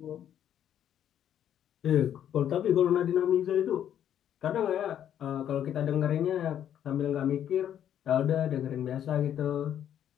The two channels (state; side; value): quieter; right; 10.1 dB